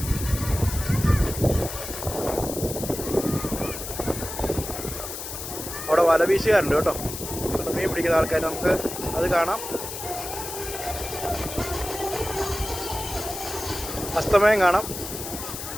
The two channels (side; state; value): left; noise; hiss, 8 dB below the sound